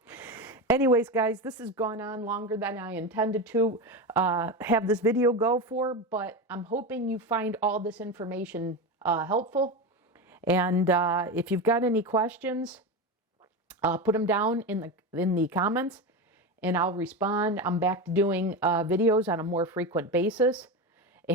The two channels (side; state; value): both; normal; correlation 0.19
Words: Anyways, guys, this has gone on longer than I intended to have this video go for. But I'm hoping you find all this information helpful. And if you've got any questions, put them down in the comments and I'll respond. I'm back to doing videos on a more frequent basis.